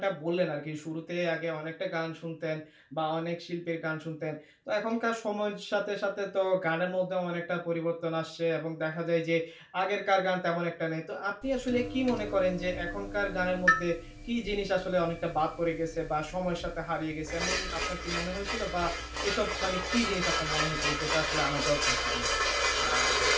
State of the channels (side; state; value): both; identical; correlation 1.00